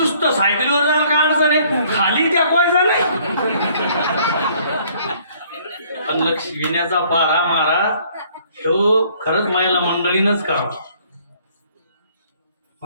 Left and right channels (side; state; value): both; inverted; correlation -0.61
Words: सायकलीवर जायला काय अडचण आहे, खाली त्या कोयचा नाही. पण लक्ष्मीण्याचा पारा मारा तो खरंच मायाला मंडळीनच करावा.